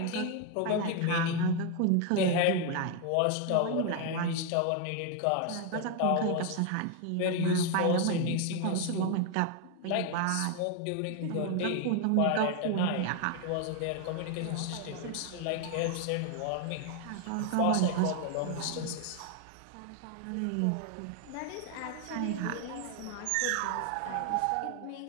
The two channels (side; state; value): both; different; correlation 0.01